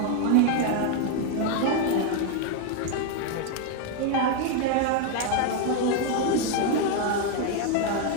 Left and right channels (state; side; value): different; both; correlation 0.01